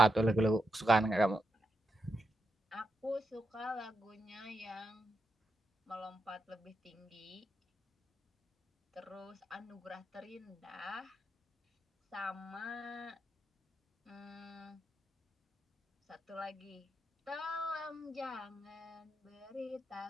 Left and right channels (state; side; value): normal; both; correlation 0.85